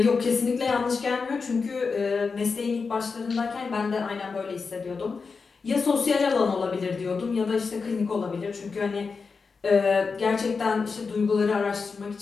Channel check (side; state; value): right; quieter; 4.9 dB